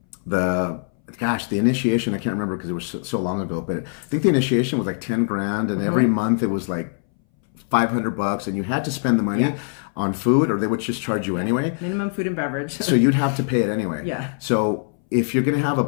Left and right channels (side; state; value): right; silent; 61 dB below the other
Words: the initiation, I can't remember because it was so long ago, but I think the initiation was like 10 grand, and every month it was like $500, and you had to spend the money on food, or they would just charge you anyway. Minimum food and beverage. So you'd have to pay it anyway. Yeah. So if you're going to have a